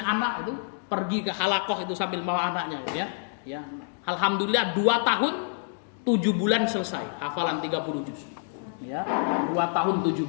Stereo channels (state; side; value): silent; right; digital silence